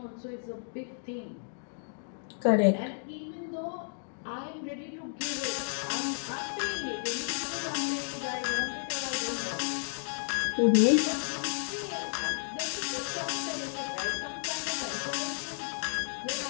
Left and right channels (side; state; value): right; silent; digital silence